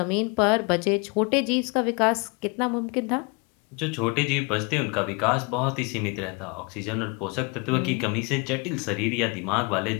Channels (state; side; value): quieter; right; 30.4 dB